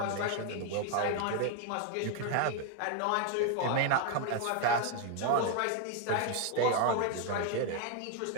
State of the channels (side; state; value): both; different; correlation 0.01